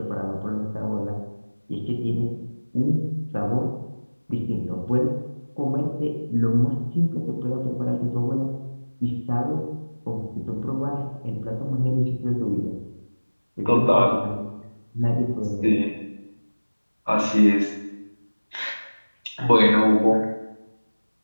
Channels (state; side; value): inverted; both; correlation -1.00